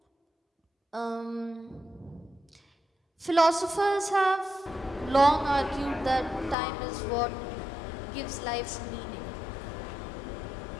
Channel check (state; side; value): drops out; right; at 6.6 s